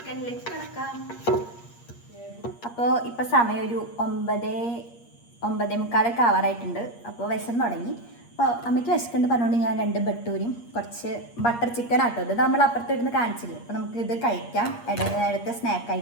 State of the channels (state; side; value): late; right; 8.5 ms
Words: കിടക്കാം. അപ്പോൾ ഇപ്പോൾ സമയം ഒരു 9:45 ആവാറായിട്ടുണ്ട്. അപ്പോൾ വിശന്ന് തുടങ്ങി. അപ്പോൾ അമ്മയ്ക്ക് വിശക്കുന്നുണ്ട് പറഞ്ഞുകൊണ്ട് ഞാൻ 2 ബട്ടൂരും കുറച്ച് ബട്ടർ ചിക്കൻ ആട്ടോ. ഇത് നമ്മൾ അപ്പുറത്തിരുന്ന് കാണിച്ചില്ലേ. അപ്പോൾ നമുക്ക് ഇത് കഴിക്കാം ഇടത്തെ